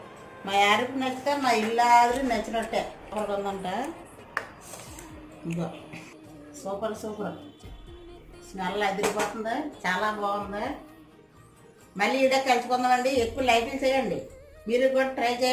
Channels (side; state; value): both; identical; correlation 1.00